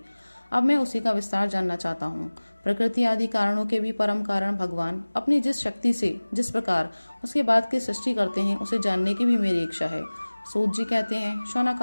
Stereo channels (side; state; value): both; inverted; correlation -1.00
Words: अब मैं उसी का विस्तार जानना चाहता हूँ। प्रकृति आदि कारणों के भी परम कारण भगवान अपनी जिस शक्ति से जिस प्रकार उसके बाद की सृष्टि करते हैं उसे जानने की भी मेरी इच्छा है। सूत जी कहते हैं, शौनक